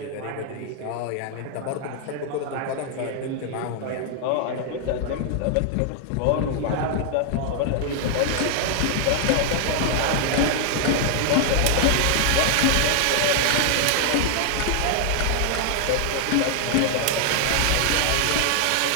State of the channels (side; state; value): both; different; correlation 0.00